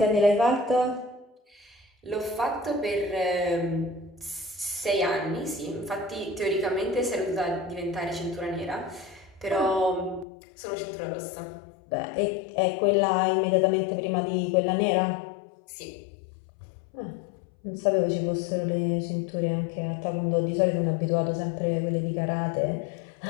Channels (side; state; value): right; drops out; at 10.2 s